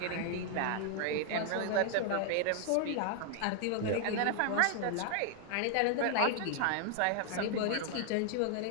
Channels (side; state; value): both; different; correlation 0.00